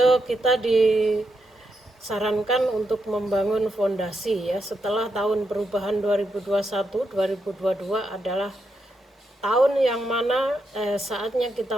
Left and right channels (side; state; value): both; normal; correlation 0.82